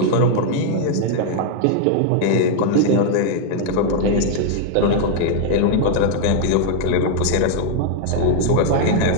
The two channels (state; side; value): different; both; correlation 0.00